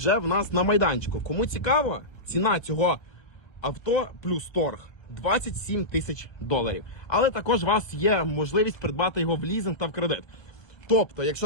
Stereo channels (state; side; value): late; right; 1.4 ms